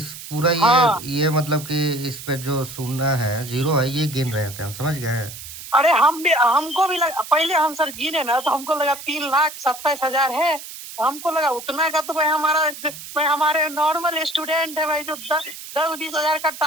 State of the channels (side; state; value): right; noise; hiss, 13 dB below the sound